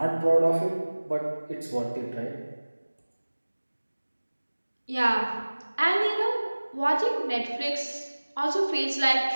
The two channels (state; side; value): inverted; both; correlation -1.00